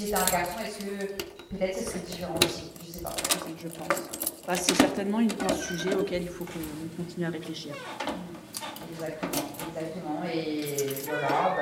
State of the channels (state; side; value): identical; both; correlation 1.00